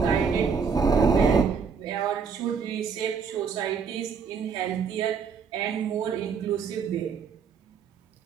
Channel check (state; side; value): quieter; left; 6.0 dB